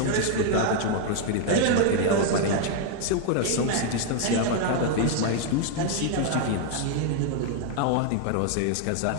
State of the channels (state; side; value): different; both; correlation 0.00